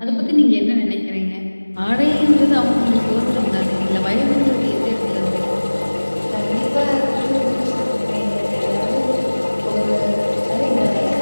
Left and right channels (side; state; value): both; inverted; correlation -1.00